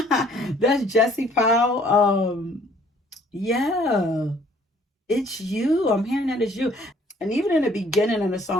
That's Jesse Powell. Yeah, it's you. I'm hearing that it's you. And even in the beginning of the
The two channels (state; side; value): normal; both; correlation 0.59